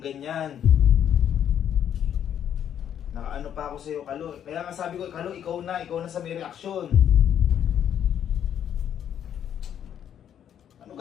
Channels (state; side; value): quieter; right; 9.5 dB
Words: Nakaano pa ako sa'yo, Kalo. Kaya nga sabi ko, Kalo, ikaw na sa may reaksyon. Ano